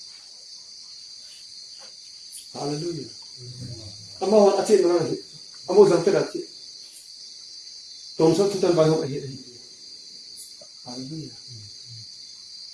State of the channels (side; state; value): both; identical; correlation 1.00